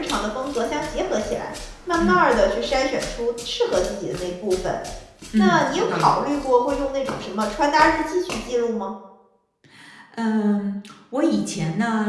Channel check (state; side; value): identical; both; correlation 1.00